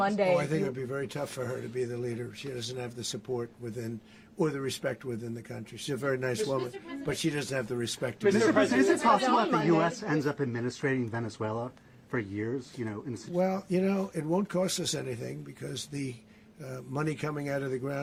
Oh, I think it would be very tough for her to be the leader. She doesn't have the support within, or the respect within the country. She's a very nice woman, but she doesn't have the respect. Mr. President, is it possible that the U.S. ends up administrating Venezuela for years? You know, well, you know, it won't cost us anything because the money coming out of the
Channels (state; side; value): identical; both; correlation 1.00